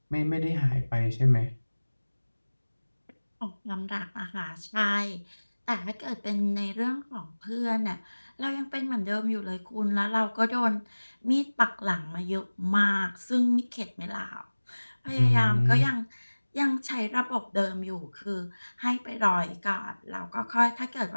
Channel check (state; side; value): inverted; both; correlation -1.00